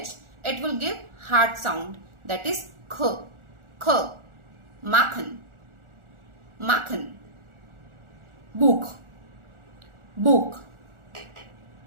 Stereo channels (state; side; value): late; left; 1.4 ms